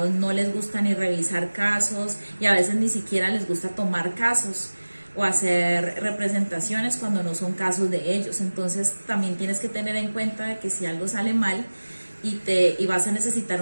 no les gusta ni revisar casos y a veces ni siquiera les gusta tomar casos o hacer representaciones cuando no son casos de ellos. Entonces también tienes que tener en cuenta de que si algo sale mal y vas a necesitar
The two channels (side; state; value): both; inverted; correlation -1.00